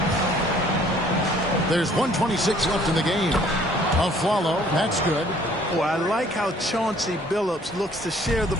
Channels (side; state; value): both; normal; correlation 0.58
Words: There's 1:26 left in the game. A follow. That's good. Oh, I like how Chauncey Billups looks to share the